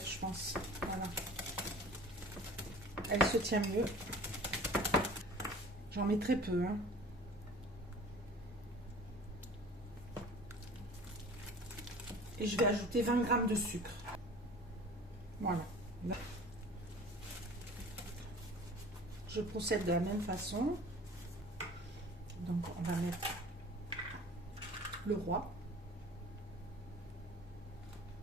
je pense. Voilà. Elle se tient mieux. J'en mets très peu, hein. Et je vais ajouter 20 g de sucre. Voilà. Je procède de la même façon. Donc, on va mettre le roi.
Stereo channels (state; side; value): normal; both; correlation 0.44